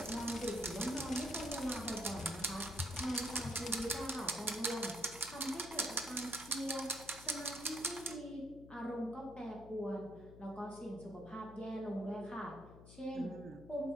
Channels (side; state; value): left; noise; hum, 16 dB below the sound